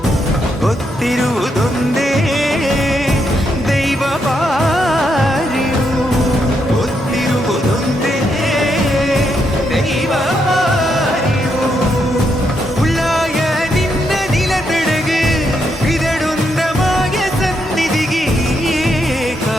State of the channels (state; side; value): normal; both; correlation 0.79